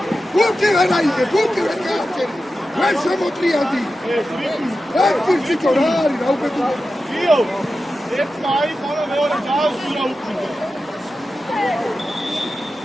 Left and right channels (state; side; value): normal; both; correlation 0.92